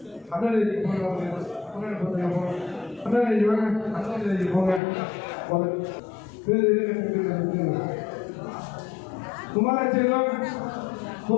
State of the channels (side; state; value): right; drops out; at 4.8 s